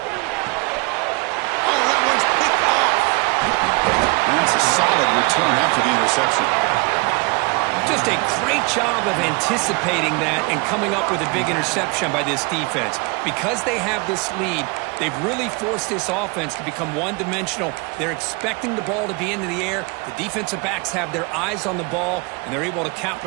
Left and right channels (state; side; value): quieter; left; 29.2 dB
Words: Oh, that one's picked off. And that's a solid return after the interception. Just a great job of anticipating that and coming up with a big interception by this defense. Because they have this lead, they've really forced this offense to become one-dimensional. They're expecting the ball to be into the air. The defensive backs have their eyes on the ball, and they're able to